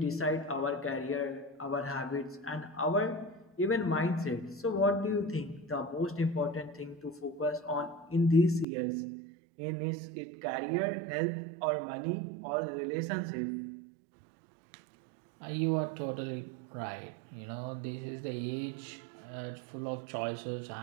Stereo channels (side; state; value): left; drops out; at 8.7 s